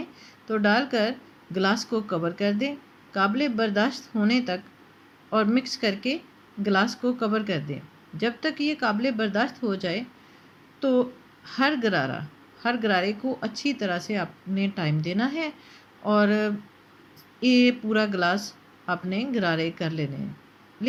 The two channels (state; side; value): identical; both; correlation 1.00